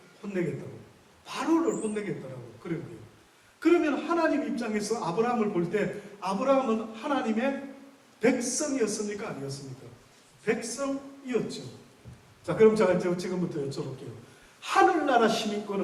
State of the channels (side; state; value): both; identical; correlation 1.00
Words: 바로를 혼내겠다라고 그런 거예요. 그러면 하나님 입장에서 아브라함을 볼 때 아브라함은 하나님의 백성이었습니까? 아니었습니까? 백성이었죠. 자, 그럼 제가 지금부터 여쭤볼게요. 하늘나라